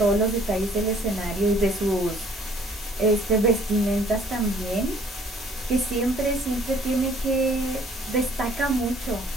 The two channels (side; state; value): both; normal; correlation 0.58